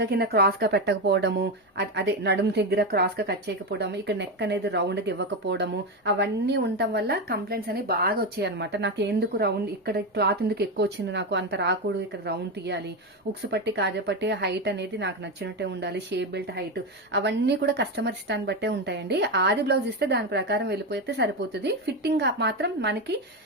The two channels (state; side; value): normal; both; correlation 0.13